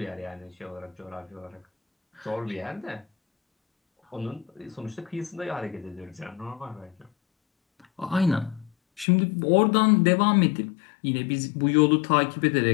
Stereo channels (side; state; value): right; drops out; at 9.1 s